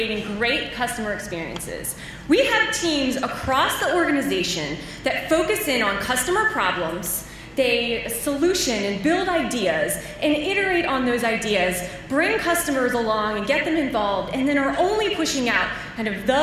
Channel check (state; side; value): identical; both; correlation 1.00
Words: great customer experiences. We have teams across the organization that focus in on customer problems. They solution and build ideas and iterate on those ideas, bring customers along and get them involved, and then are only pushing out kind of